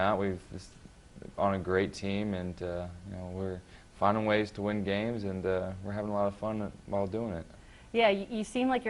we've just on a great team, and we're finding ways to win games, and we're having a lot of fun while doing it. Yeah, you seem like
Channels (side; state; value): both; identical; correlation 1.00